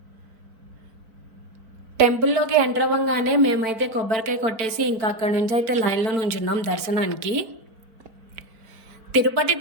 టెంపుల్లోకి ఎంటర్ అవ్వగానే మేమైతే కొబ్బరికాయ కొట్టేసి ఇంకా అక్కడ నుంచి అయితే లైన్లో నుంచున్నాం దర్శనానికి. తిరుపతి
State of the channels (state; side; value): late; left; 4.5 ms